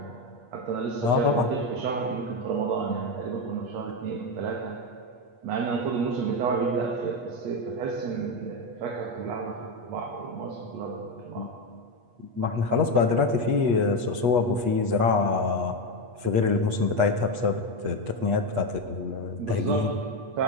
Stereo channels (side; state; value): left; late; 8.4 ms